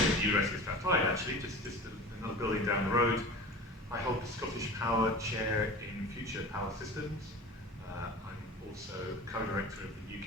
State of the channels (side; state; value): both; normal; correlation 0.35